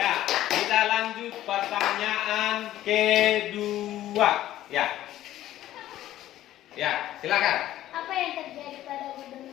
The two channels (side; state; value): right; quieter; 13.7 dB